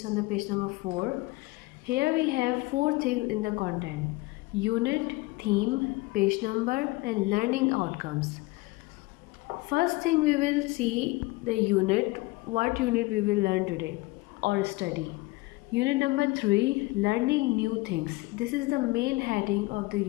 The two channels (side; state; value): right; quieter; 22.2 dB